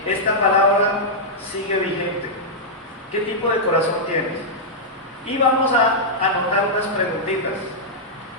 esta palabra sigue vigente. ¿Qué tipo de corazón tienes? Y vamos a anotar unas preguntitas.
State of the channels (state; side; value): normal; both; correlation -0.08